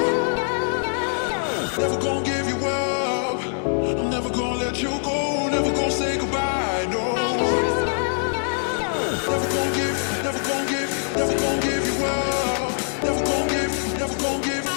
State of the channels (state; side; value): silent; right; digital silence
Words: Never gonna give you up, I'm never gonna let you go, never gonna say goodbye, no. Never gonna give you up, never gonna give, never gonna give, never gonna give you up, never gonna give, never gonna give,